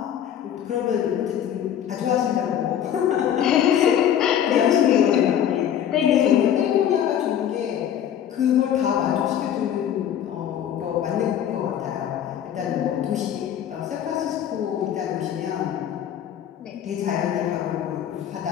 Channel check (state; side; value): quieter; right; 9.9 dB